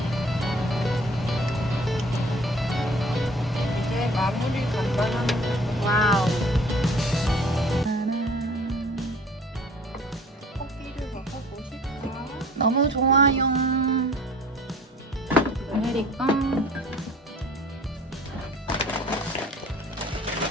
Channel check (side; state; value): both; normal; correlation 0.49